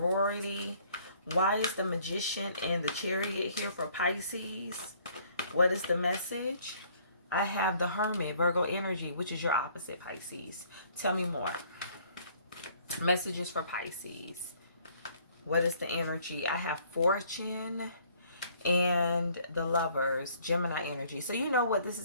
Why is the Magician and the Chariot here for Pisces? What is the message? I have the Hermit, Virgo energy, which is your opposite, Pisces. Tell me more. Messages for Pisces. What is the energy? I have Fortune and the Lovers, Gemini energy. So you know what this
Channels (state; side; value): inverted; both; correlation -0.60